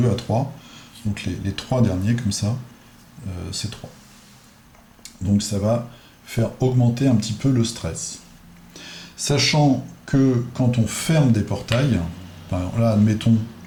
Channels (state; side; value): identical; both; correlation 1.00